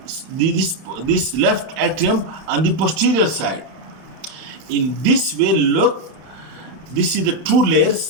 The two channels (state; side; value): late; left; 31 ms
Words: left atrium on the posterior side. In this way, look, this is the two